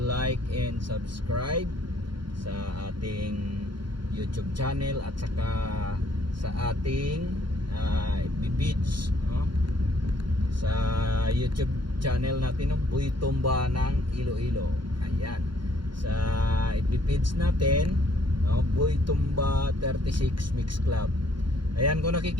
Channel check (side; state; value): left; late; 0.73 ms